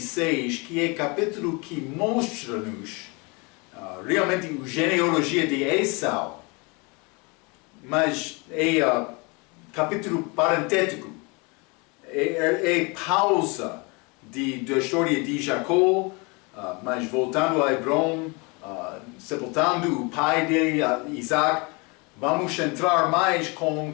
que é o capítulo que mostra-nos realmente a genealogia de Esau. Mas é capítulo parentético. É pausa da história de Jacó, mas voltando a Hebron, sepultando o pai de Isaac, vamos entrar mais com o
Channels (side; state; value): right; quieter; 29.2 dB